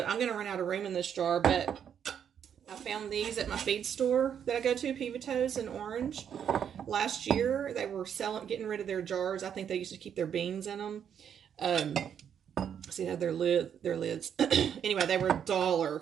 I'm going to run out of room in this jar, but I found these at my feed store that I go to, Pivotto's in Orange. Last year, they were getting rid of their jars. I think they used to keep their beans in them. See how their lids. Anyway, they were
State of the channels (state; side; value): quieter; left; 8.4 dB